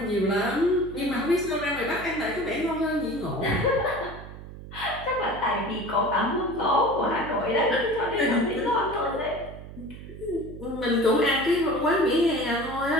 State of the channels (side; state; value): right; noise; hum, 14 dB below the sound